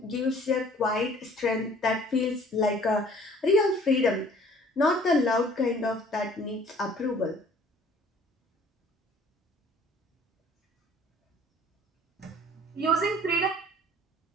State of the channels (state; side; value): normal; both; correlation 0.54